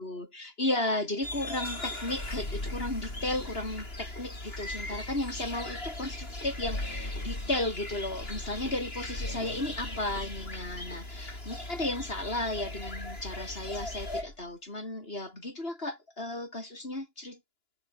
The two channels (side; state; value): right; late; 2.9 ms